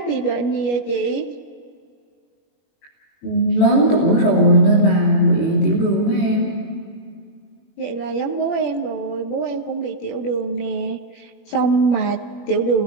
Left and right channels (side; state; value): right; late; 21 ms